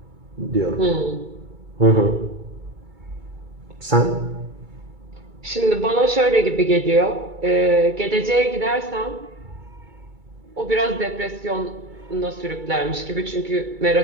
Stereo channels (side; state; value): left; late; 2.3 ms